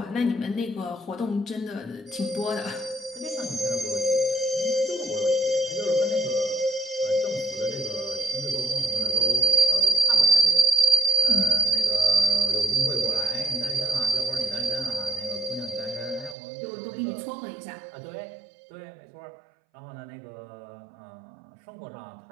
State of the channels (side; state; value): left; drops out; at 16.4 s